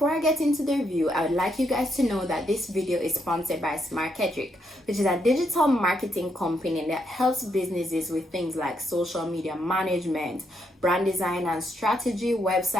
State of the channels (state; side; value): normal; both; correlation 0.77